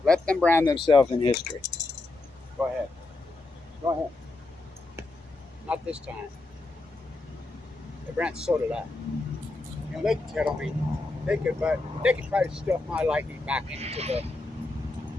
Let them brand themselves in history. Go ahead. Go ahead. Not this time. They brand, so did I. You know, they could tell me, they could try to stuff my lightning back into the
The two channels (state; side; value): quieter; right; 3.2 dB